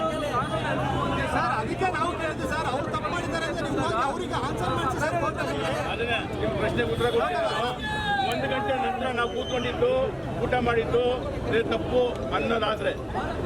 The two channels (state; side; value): identical; both; correlation 1.00